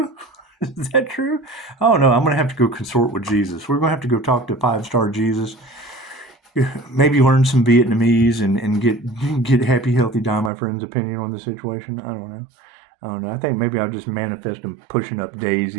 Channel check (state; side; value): drops out; left; at 10.5 s